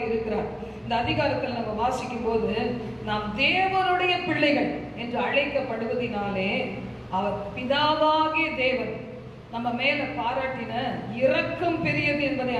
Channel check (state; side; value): identical; both; correlation 1.00